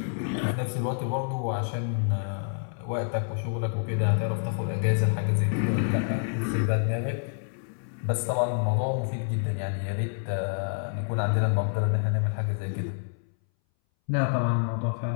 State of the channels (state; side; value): silent; right; 59 dB below the other